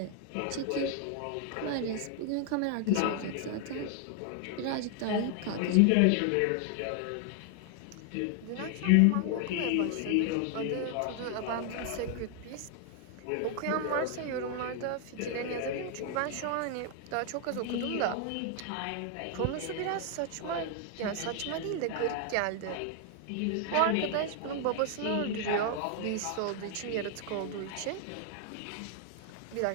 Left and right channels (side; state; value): both; different; correlation 0.00